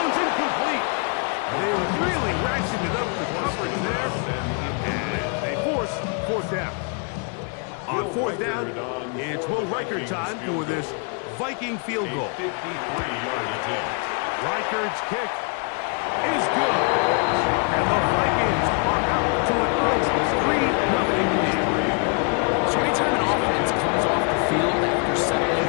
incomplete. They really ratcheted up the coverage there. And they force 4th down. On 4th down, it's Will Reichert time for this Viking field goal. 53-yard attempt. Reichert's kick is good. And the Vikings are out to an early 3-0 lead. So anytime an offense comes off the field after settling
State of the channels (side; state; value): right; quieter; 39.0 dB